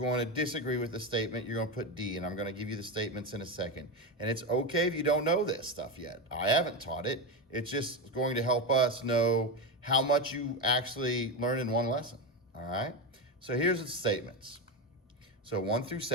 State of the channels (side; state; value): both; normal; correlation 0.14